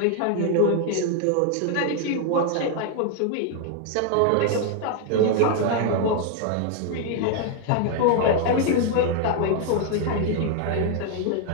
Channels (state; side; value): different; both; correlation 0.00